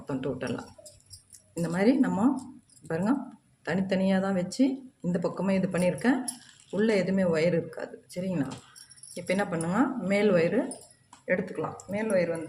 டோட்டலாக. இந்த மாதிரி நம்ம பாருங்க, தனித்தனியாக தான் வச்சு இந்த பக்கமே இது பண்ணியிருக்கேன். உள்ளே எதுவுமே ஒயர் இருக்காது. சரிங்களா? இப்போ என்ன பண்ணுங்க, மேல் ஒயரு எடுத்துக்கலாம். மேல் ஒயர்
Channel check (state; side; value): identical; both; correlation 1.00